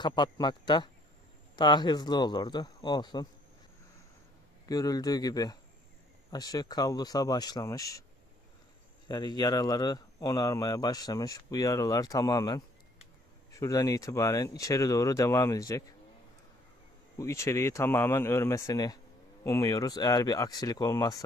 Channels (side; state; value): both; normal; correlation 0.63